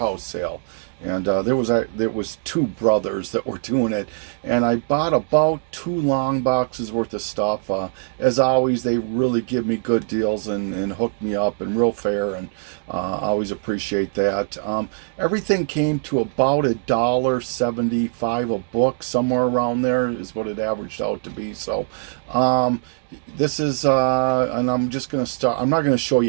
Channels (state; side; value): silent; left; digital silence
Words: sale, and there was two brothers that were doing it, and I bought about two long boxes worth of stuff. As always, they really give me good deals and hook me up and real fair, and always appreciate that. Everything came to about $1.75 a book, somewhere around there is what it averaged out to be. So, this is and I'm just going to start. I'm not going to show